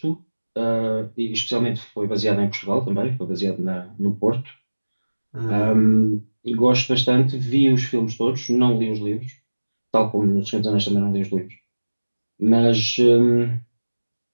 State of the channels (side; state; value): both; inverted; correlation -1.00